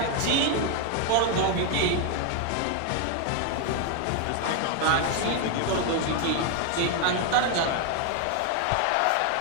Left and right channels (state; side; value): different; both; correlation 0.01